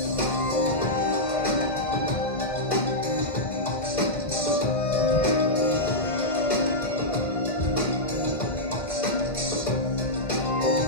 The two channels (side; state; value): right; late; 1.5 ms